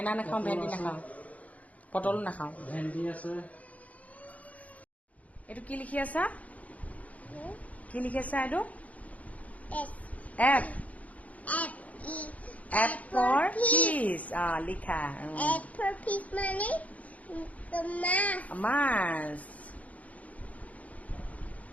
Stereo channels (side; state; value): right; late; 0.070 ms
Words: নাখাওঁ, ভেন্দি নাখাওঁ, পটলো নাখাওঁ। ভেন্দি আছে। এইটো কি লিখি আছা? কি লিখি আছা এইটো? এফ। F for fish. লিখা। F for fish মানে মাছ।